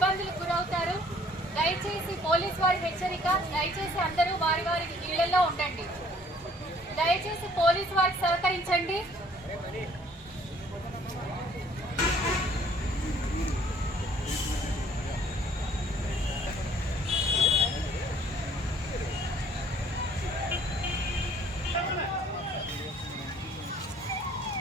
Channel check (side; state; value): both; normal; correlation 0.59